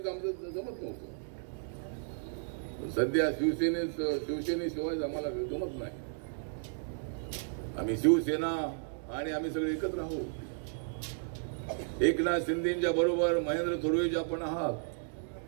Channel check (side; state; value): left; silent; digital silence